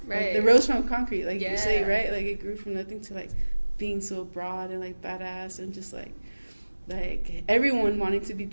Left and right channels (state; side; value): inverted; both; correlation -1.00